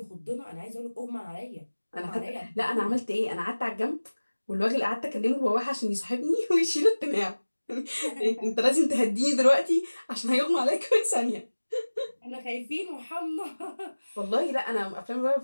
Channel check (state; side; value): inverted; both; correlation -1.00